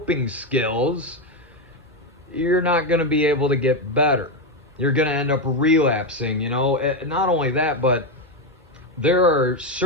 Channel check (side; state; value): both; normal; correlation 0.08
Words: skills, you're not going to be able to get better. You're going to end up relapsing, Not only that, but there are